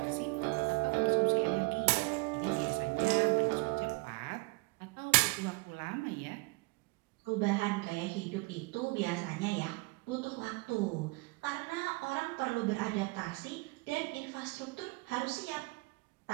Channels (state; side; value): quieter; left; 26.8 dB